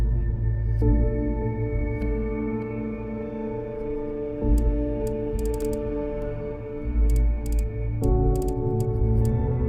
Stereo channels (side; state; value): both; identical; correlation 1.00